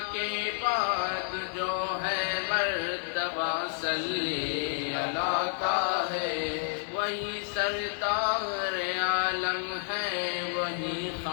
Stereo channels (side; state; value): right; silent; digital silence